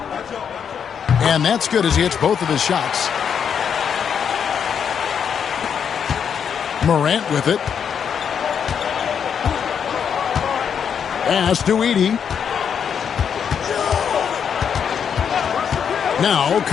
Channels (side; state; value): right; quieter; 7.5 dB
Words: And that's good as he hits both of his shots. Morant with it. Pass to Edey. Now